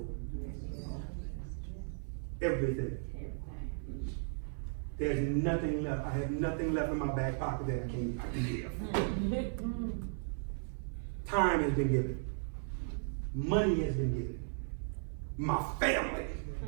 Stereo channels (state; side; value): silent; left; 54 dB below the other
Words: it. Everything. There's nothing left. I have nothing left in my back pocket that I can give. Time has been given. Money has been given. My family.